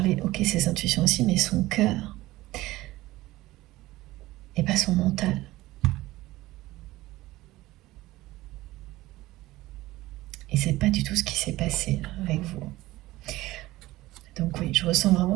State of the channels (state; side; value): quieter; left; 17.8 dB